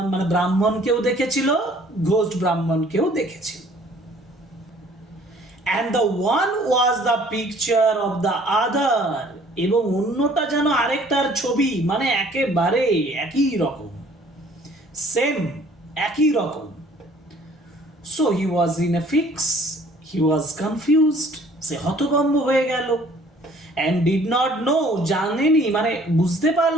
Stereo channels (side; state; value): both; normal; correlation 0.56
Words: মানে ব্রাহ্মণকেও দেখেছিল, ঘোস্ট ব্রাহ্মণকেও দেখেছিল। and the one was the picture of the other, এবং অন্যটা যেন আরেকটার ছবি, মানে একেবারে একই রকম, সেম একই রকম। so he was in a fix, he was confused, সে হতভম্ব হয়ে গেল, and did not know, জানেনি মানে বুঝতে